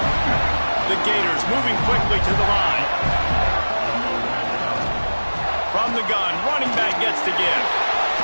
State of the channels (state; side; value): inverted; both; correlation -1.00